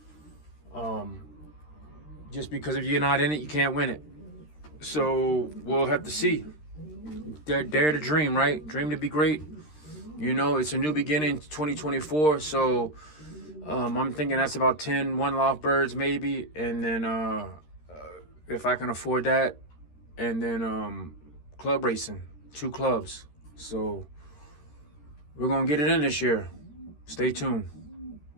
Just because if you're not in it, you can't win it. So we'll have to see. Dare to dream, right? Dream to be great. It's a new beginning, 2024. So I'm thinking that's about 10 one-loft birds maybe, and then if I can afford that, and then club racing, 2 clubs. So We're going to get it in this year. Stay tuned.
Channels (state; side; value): late; right; 13 ms